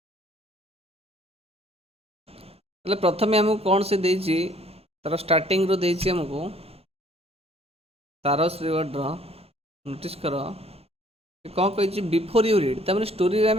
ହେଲେ ପ୍ରଥମେ ଆମକୁ କ'ଣ ସେ ଦେଇଛି, ତାର ଷ୍ଟାର୍ଟିଂରୁ ଦେଇଛି ଆମକୁ ତାରସ୍ ରିୱାର୍ଡ଼ର, ନୋଟିସ୍ କର କ'ଣ କହିଛି, ବିଫୋର୍ ୟୁ ରିଡ୍। ତା'ମାନେ ଷ୍ଟୋରିରେ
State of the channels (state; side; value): normal; both; correlation 0.59